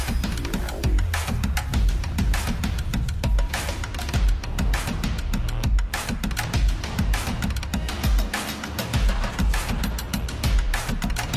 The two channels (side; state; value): both; identical; correlation 1.00